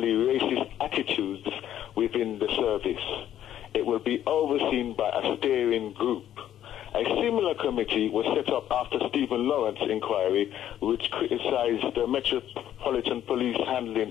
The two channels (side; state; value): right; quieter; 11.3 dB